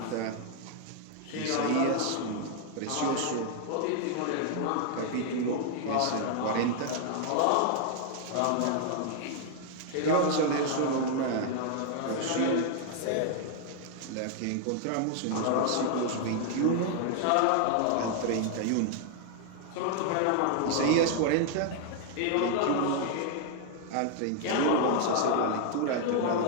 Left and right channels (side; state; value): both; different; correlation 0.00